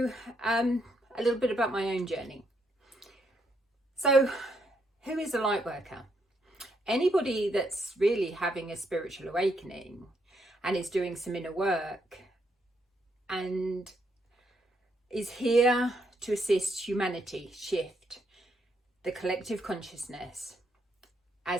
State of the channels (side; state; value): both; normal; correlation 0.76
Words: a little bit about my own journey. So who is a light worker? Anybody that's really having a spiritual awakening and is doing some inner work and is here to assist humanity shift the collective consciousness